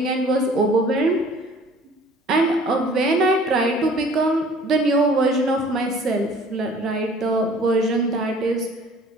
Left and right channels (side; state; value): both; normal; correlation 0.51